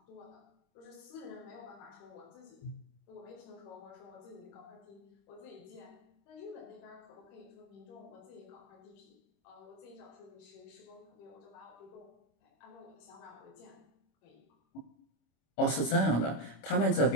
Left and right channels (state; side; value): late; right; 26 ms